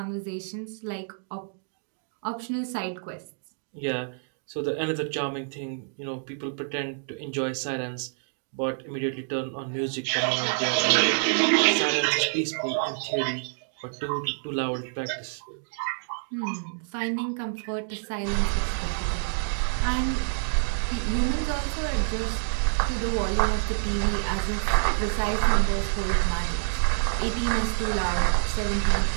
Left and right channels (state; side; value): silent; left; digital silence